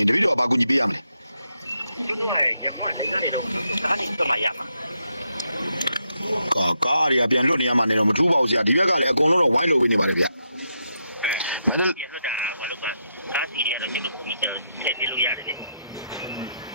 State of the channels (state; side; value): inverted; both; correlation -0.81